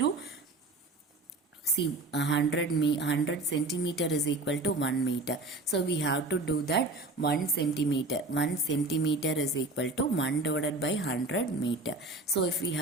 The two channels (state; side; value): quieter; left; 3.1 dB